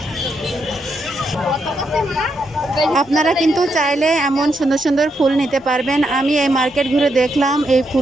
আপনারা কিন্তু চাইলে এমন সুন্দর সুন্দর ফুল নিতে পারবেন। আমি এই মার্কেট ঘুরে দেখলাম এই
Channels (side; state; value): both; normal; correlation 0.80